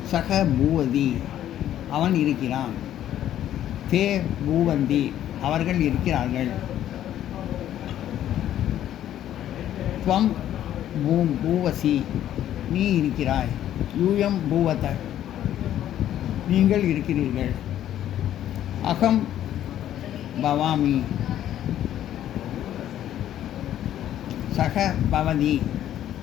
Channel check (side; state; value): right; quieter; 11.7 dB